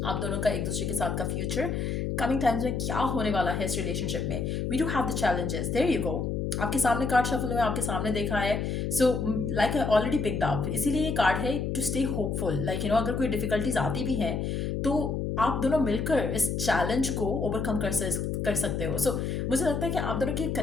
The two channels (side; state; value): left; noise; hum, 1 dB below the sound